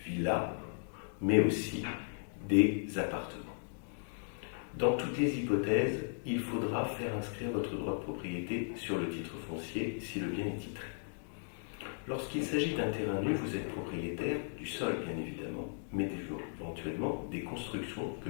villas, mais aussi des appartements. Dans toutes les hypothèses, il faudra faire inscrire votre droit de propriété sur le titre foncier si le bien est titré. Lorsqu'il s'agit d'un terrain nu, vous êtes propriétaire du sol, bien évidemment, mais éventuellement des constructions que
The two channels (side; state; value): right; silent; digital silence